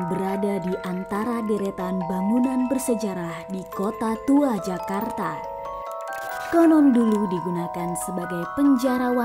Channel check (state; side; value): identical; both; correlation 1.00